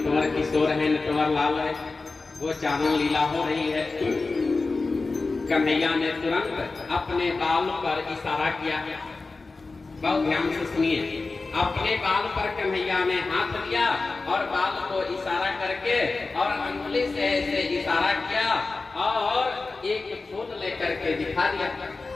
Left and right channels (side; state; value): right; quieter; 3.8 dB